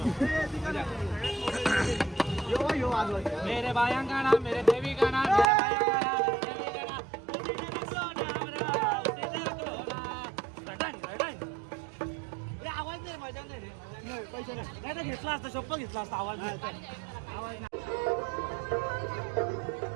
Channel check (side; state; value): left; drops out; at 5.5 s